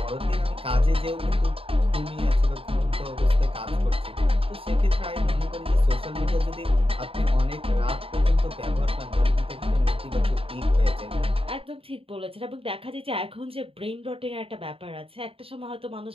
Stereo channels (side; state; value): left; late; 0.27 ms